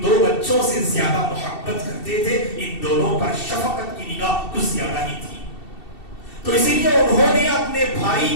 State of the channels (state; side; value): late; right; 2.7 ms